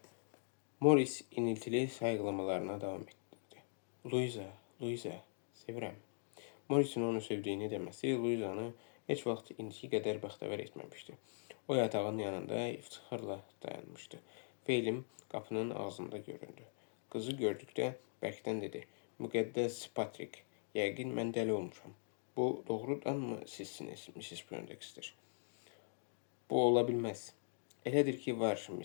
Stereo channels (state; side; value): silent; right; digital silence